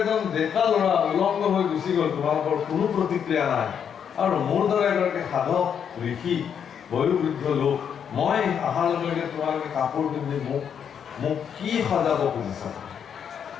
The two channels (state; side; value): quieter; right; 7.9 dB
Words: এজন ডেকা ল'ৰা উলংগ হৈ গুচি গ'ল, তোমালোকৰ কোনো প্ৰতিক্ৰিয়া নাই। আৰু মোৰ দৰে এগৰাকী সাধক ঋষি বয়োবৃদ্ধ লোক, মই অহাৰ লগে লগে তোমালোকে কাপোৰ পিন্ধি মোক কি সজাব খুজিছা?